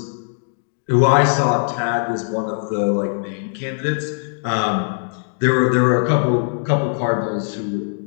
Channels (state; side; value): silent; right; digital silence